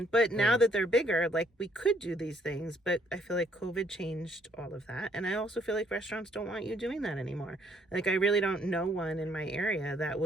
But now that they're bigger, like we could do these things, but I feel like COVID changed all of that. And I also feel like restaurants don't want you doing that anymore. Like I really don't know one in my area that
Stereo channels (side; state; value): both; normal; correlation 0.67